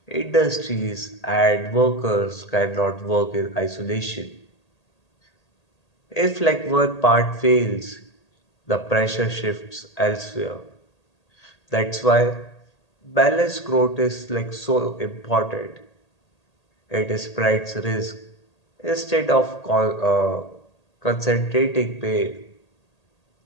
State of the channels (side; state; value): right; late; 1.8 ms